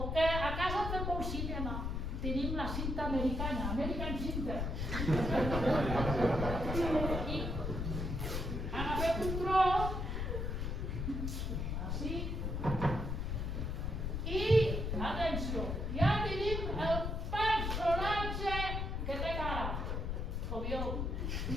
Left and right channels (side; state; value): left; noise; rumble, 2 dB below the sound